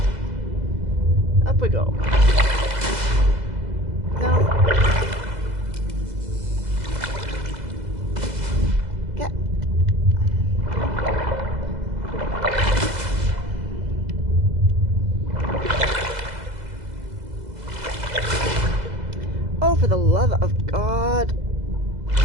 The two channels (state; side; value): late; left; 2.0 ms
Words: Up we go. No. Get. Oh, for the love of God.